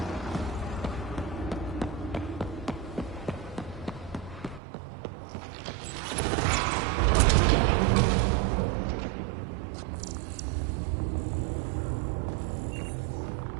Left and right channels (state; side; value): drops out; left; at 4.6 s